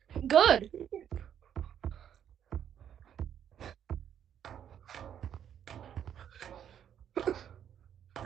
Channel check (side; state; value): left; quieter; 9.4 dB